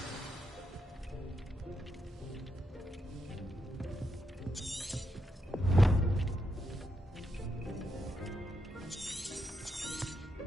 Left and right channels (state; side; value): normal; both; correlation 0.82